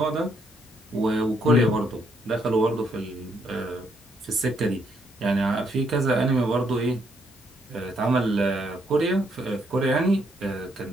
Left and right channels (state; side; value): normal; both; correlation 0.73